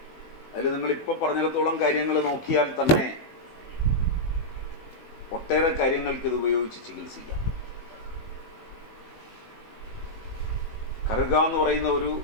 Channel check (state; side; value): late; right; 18 ms